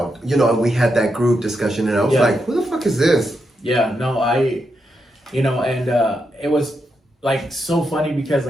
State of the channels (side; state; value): both; normal; correlation 0.84